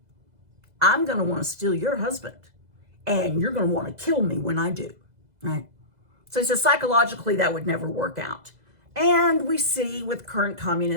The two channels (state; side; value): late; left; 2.0 ms